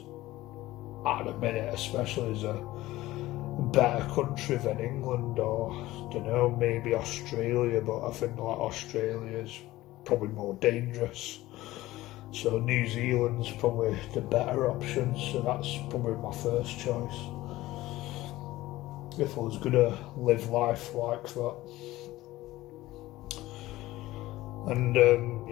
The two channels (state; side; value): quieter; right; 17.1 dB